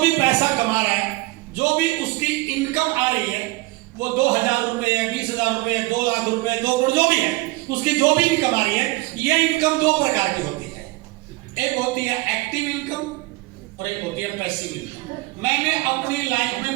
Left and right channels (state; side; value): quieter; left; 21.2 dB